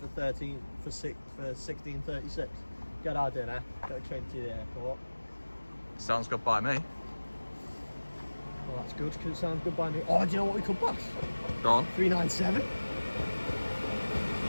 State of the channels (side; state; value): both; inverted; correlation -1.00